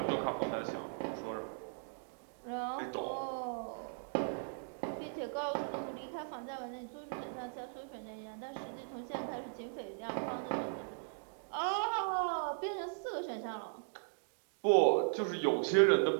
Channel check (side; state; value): left; silent; digital silence